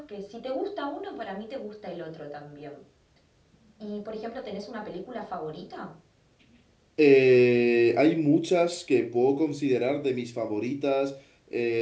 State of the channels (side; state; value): both; identical; correlation 1.00